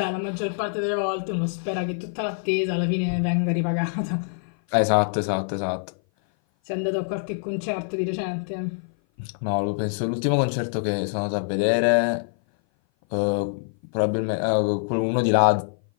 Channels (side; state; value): right; silent; 57 dB below the other